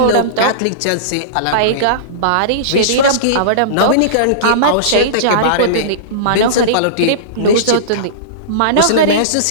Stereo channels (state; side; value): different; both; correlation -0.04